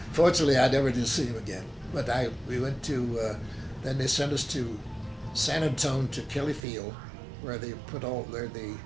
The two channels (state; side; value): drops out; left; at 6.6 s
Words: Fortunately, I never did see him again. But we went to, then they sent us to San Antonio to Kelly Field, where they